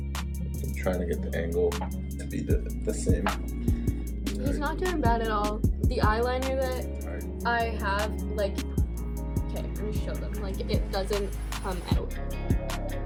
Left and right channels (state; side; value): identical; both; correlation 1.00